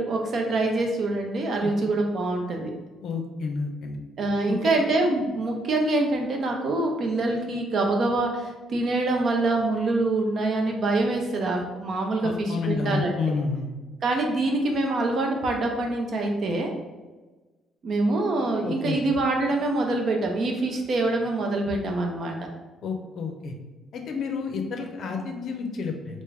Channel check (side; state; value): both; normal; correlation 0.73